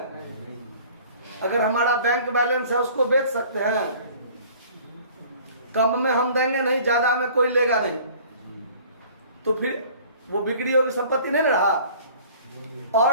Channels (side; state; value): both; inverted; correlation -0.50